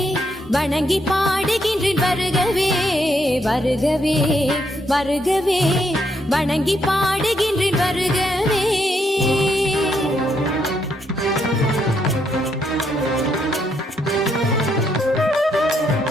வணங்கி பாடுகின்றேன் வருகவே வருகவே வருகவே வணங்கி பாடுகின்றேன் வருகவே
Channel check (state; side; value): normal; both; correlation 0.75